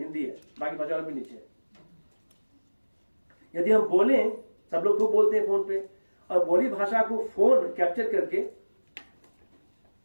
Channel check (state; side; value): inverted; both; correlation -1.00